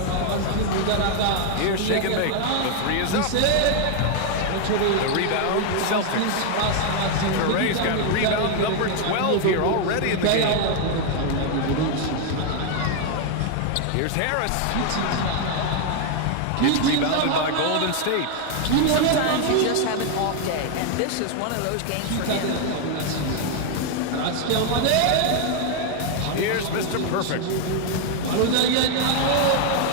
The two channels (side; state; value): both; different; correlation 0.00